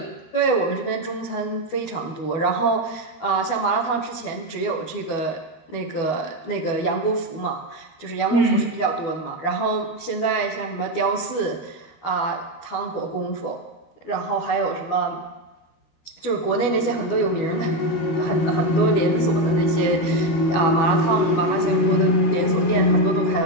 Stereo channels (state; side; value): late; right; 12 ms